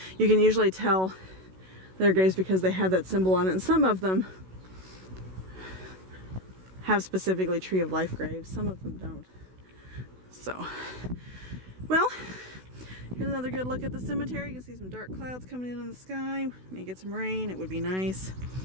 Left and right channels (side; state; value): left; late; 16 ms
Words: You can usually tell their graves because they have that symbol on it, and some of them have specifically Tree of Life graves, some of them don't. So, well, here's another good look at the cemetery. You can see some dark clouds coming in on the sky. May get some rain, it would be nice.